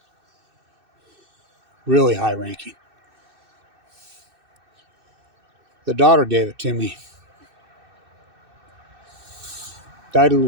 Really high-ranking. The daughter gave it to me. Died of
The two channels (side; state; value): left; late; 2.6 ms